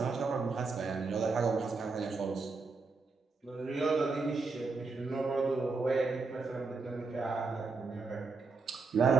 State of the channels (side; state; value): left; quieter; 4.2 dB